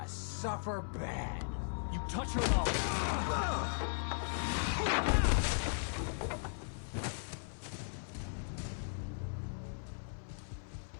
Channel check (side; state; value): right; silent; 53 dB below the other